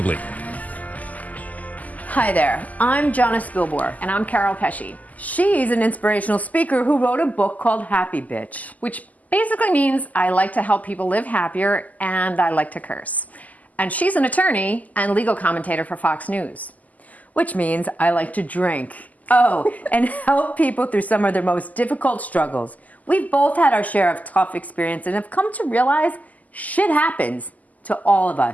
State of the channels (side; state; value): right; late; 0.077 ms